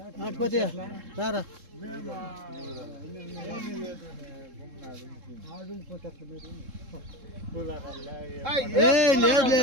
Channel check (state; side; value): late; left; 3.7 ms